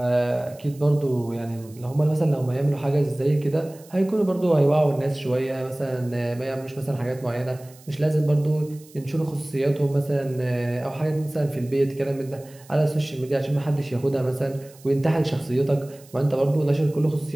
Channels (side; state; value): right; noise; hiss, 24 dB below the sound